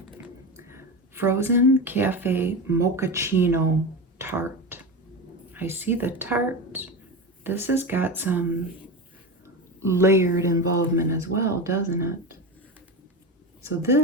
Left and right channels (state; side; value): normal; both; correlation 0.21